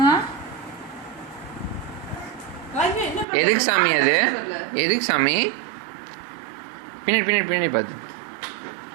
எதுக்கு சாமி அது? எதுக்கு சாமி? பின்னாடி பார்த்து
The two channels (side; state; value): left; drops out; at 3.2 s